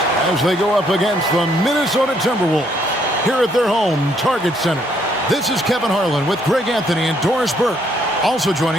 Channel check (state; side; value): normal; both; correlation 0.69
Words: as they go up against the Minnesota Timberwolves here at their home Target Center. This is Kevin Harlan with Greg Anthony and Doris Burke. Also